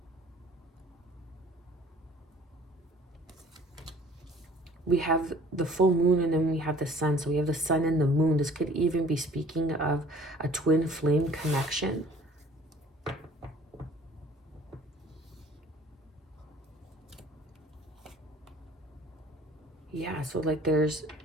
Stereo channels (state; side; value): normal; both; correlation 0.53